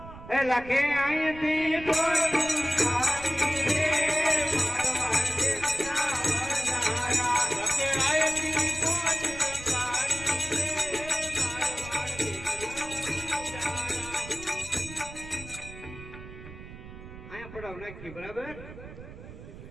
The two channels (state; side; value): noise; right; rumble, 14 dB below the sound